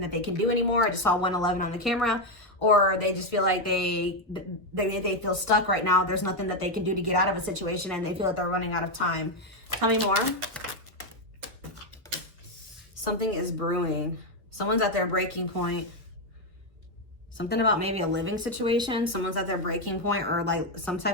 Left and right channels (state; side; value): normal; both; correlation 0.05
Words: that they can do anymore. I just saw 111 on the camera. Or they just feel like they feel stuck right now. There's nothing that they can do to get out of a situation and they feel like they're running out of time. Tell me more. Something is brewing. Someone's at their breaking point. Something about maybe a living situation. Someone's at their breaking point or like